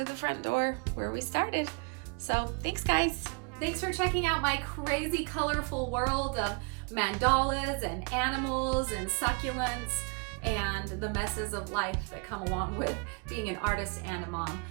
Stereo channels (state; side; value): quieter; left; 34.2 dB